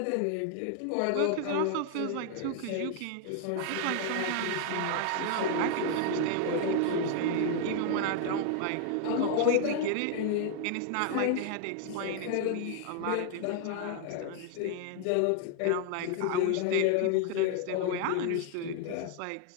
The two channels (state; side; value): different; both; correlation 0.00